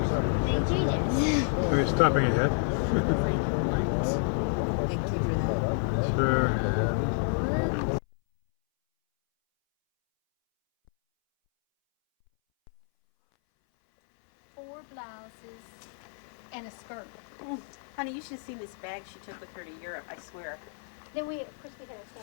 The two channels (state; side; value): silent; right; 58 dB below the other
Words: We're stopping ahead. Thank you for that. Sure. Four blouses and a skirt. Honey, you should have seen this bag she took with her to Europe, I swear. Then we, of course, we had a